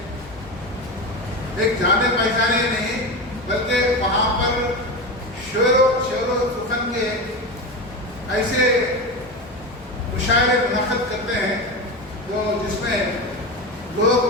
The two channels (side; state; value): both; normal; correlation 0.21